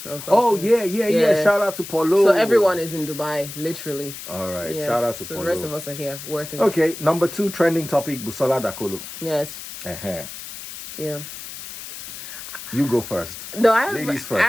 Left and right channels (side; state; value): left; noise; hiss, 11 dB below the sound